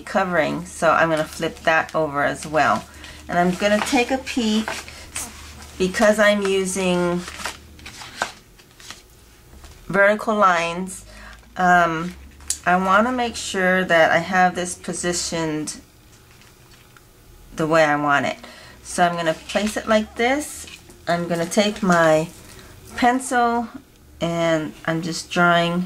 covering, so I'm going to flip that over as well. And I'm going to take a peek, because I'm using vertical lines. I want to make sure that I have this positioned the way I want it. So I'm going to place it like this. I'm going to take my pencil, and I'm just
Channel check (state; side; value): identical; both; correlation 1.00